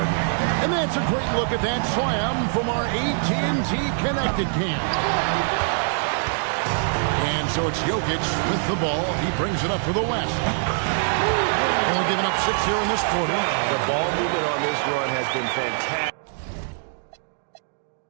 game. And that's a great look at that slam from our AT&T Connected Cam. And so it's Jokic with the ball. He brings it up for the West. Only giving up 6 here in this quarter. The ball movement on this run has been fantastic.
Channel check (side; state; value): left; silent; digital silence